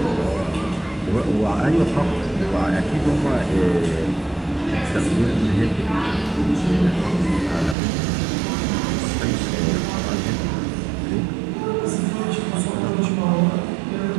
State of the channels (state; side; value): drops out; left; at 7.8 s